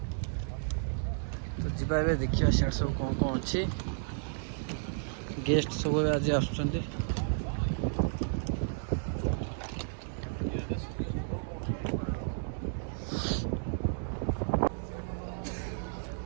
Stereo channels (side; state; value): left; silent; digital silence